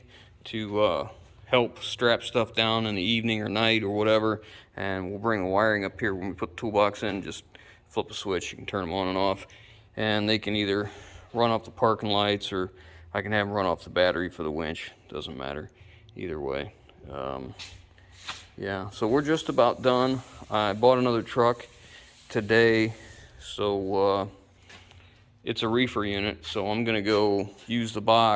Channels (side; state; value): both; identical; correlation 1.00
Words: to help strap stuff down in the evening or night or whatever. And we'll bring the wiring up here when we put the toolbox in. Just flip a switch, you can turn them on and off, and they can either run off the parking lights, or I can have them run off the battery for the winch. Doesn't matter either way. Yeah, so we're just about done. I bought another truck today, so it's a reefer unit, so I'm gonna go use the